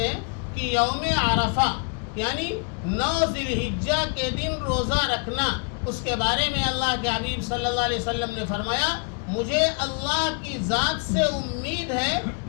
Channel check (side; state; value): right; quieter; 37.6 dB